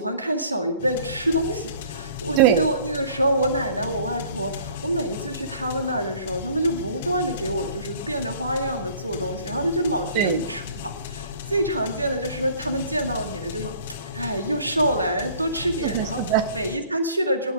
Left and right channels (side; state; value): both; inverted; correlation -0.51